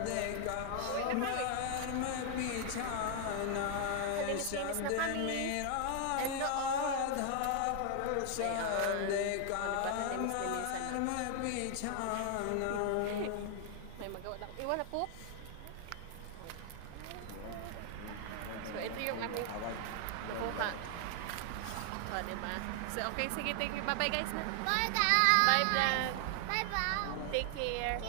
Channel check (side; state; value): both; different; correlation 0.00